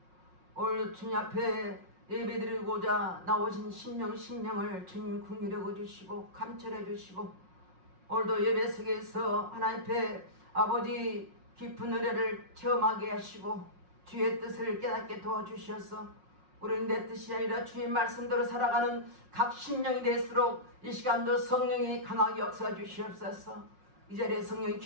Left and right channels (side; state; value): left; late; 5.5 ms